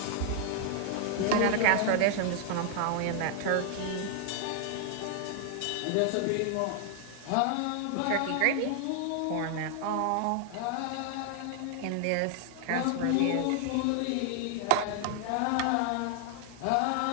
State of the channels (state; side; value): different; both; correlation 0.00